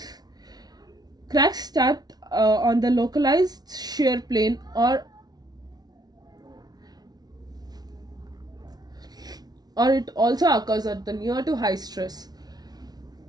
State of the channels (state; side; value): late; left; 0.19 ms